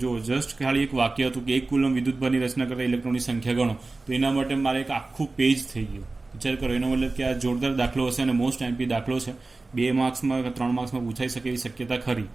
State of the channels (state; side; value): quieter; left; 3.4 dB